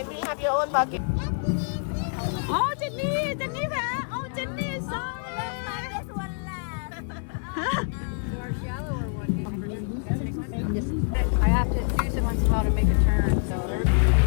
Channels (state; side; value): silent; right; 61 dB below the other